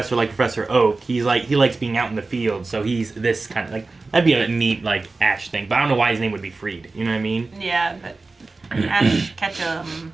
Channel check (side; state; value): left; quieter; 3.6 dB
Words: like Professor Oak. He likes being out in the field, so he's this kind of like that'd be a neat like Ash thing. But I don't know why his name would be Freed. You know what I mean? Yeah, but Ash Ketchum.